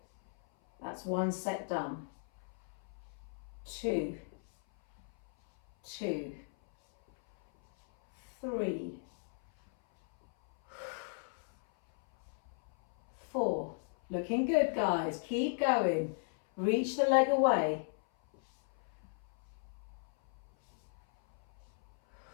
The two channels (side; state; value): right; silent; 54 dB below the other